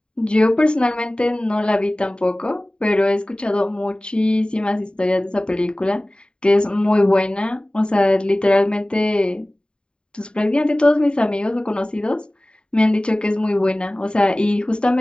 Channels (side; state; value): right; late; 0.050 ms